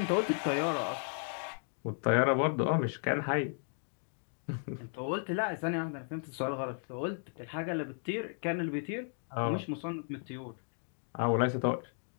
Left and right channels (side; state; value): right; silent; 55 dB below the other